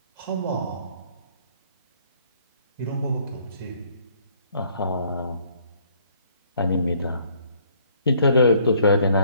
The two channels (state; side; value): inverted; both; correlation -0.64